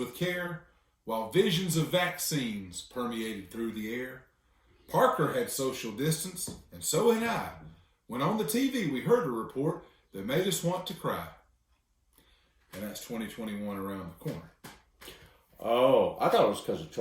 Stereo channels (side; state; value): both; identical; correlation 1.00